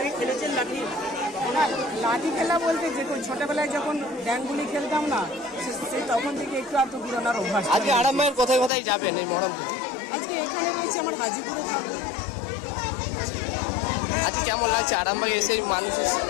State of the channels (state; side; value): drops out; right; at 8.7 s